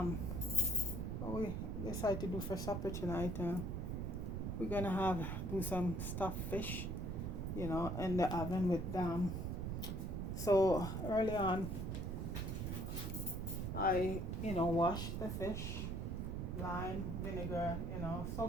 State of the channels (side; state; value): right; noise; rumble, 2 dB below the sound